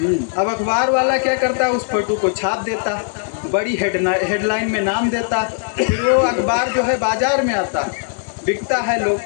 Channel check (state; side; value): silent; right; 67 dB below the other